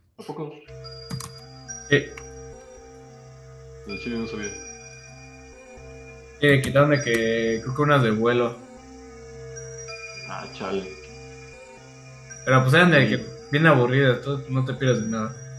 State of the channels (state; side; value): identical; both; correlation 1.00